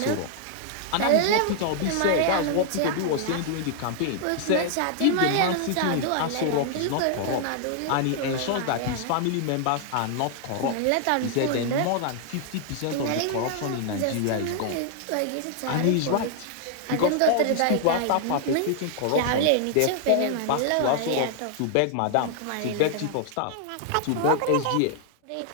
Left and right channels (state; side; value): different; both; correlation 0.00